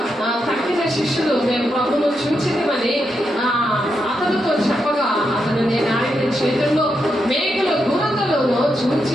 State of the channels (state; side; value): normal; both; correlation 0.83